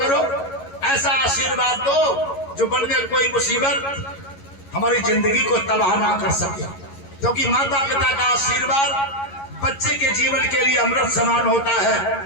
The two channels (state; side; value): late; right; 11 ms